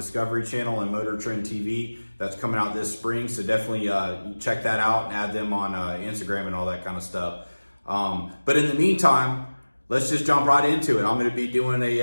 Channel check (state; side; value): inverted; both; correlation -1.00